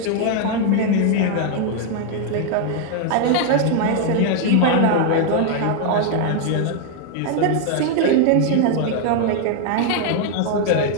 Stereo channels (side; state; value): both; different; correlation 0.00